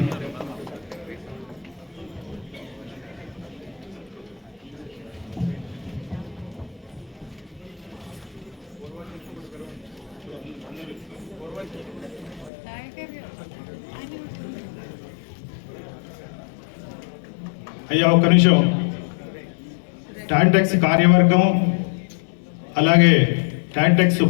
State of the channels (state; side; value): drops out; right; at 12.5 s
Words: అయ్యా ఒక్క నిమిషం. టాంటెక్స్ కార్యవర్గం, అలాగే టాంటెక్స్